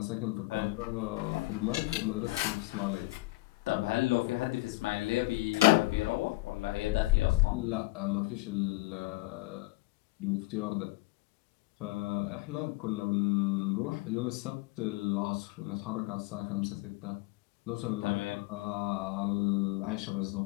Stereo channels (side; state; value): right; quieter; 20.7 dB